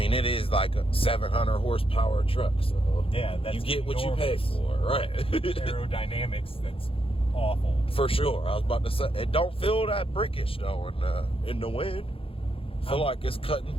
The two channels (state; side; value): late; right; 0.27 ms